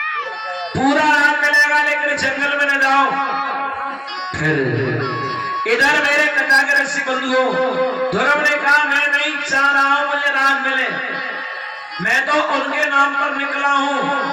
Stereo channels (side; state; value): both; identical; correlation 1.00